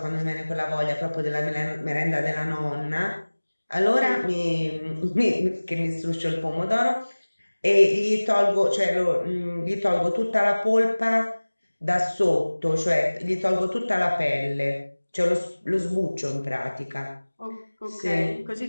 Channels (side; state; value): both; inverted; correlation -1.00